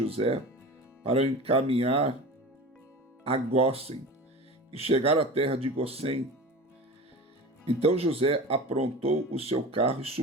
para o encaminhar a Gósen e chegar à terra de Gósen. Então José aprontou o seu carro e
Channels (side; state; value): both; normal; correlation 0.34